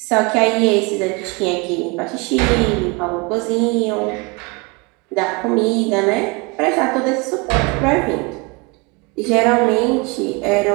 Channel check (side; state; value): left; quieter; 28.1 dB